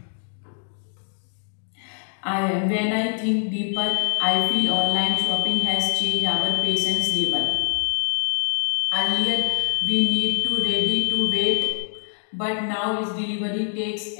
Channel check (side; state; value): right; silent; digital silence